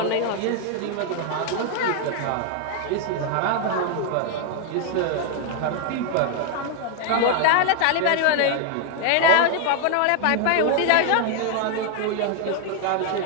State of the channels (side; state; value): both; different; correlation 0.00